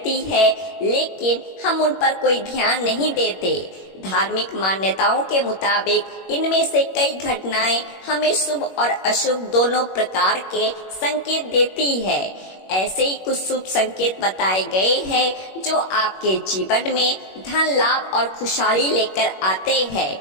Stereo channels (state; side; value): late; right; 21 ms